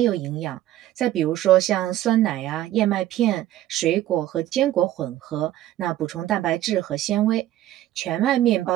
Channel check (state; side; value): quieter; left; 13.6 dB